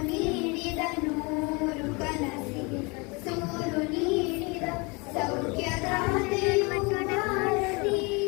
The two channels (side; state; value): right; quieter; 28.6 dB